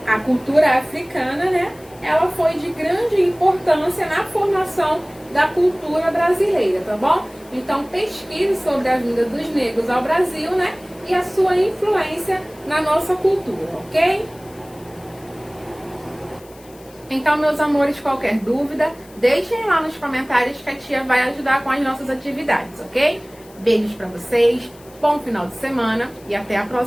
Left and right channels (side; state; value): left; noise; hiss, 25 dB below the sound